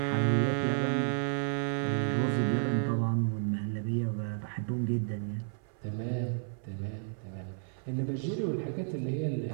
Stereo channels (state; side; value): silent; left; 56 dB below the other